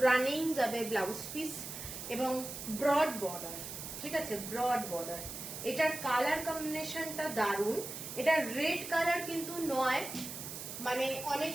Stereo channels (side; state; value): right; noise; hiss, 8 dB below the sound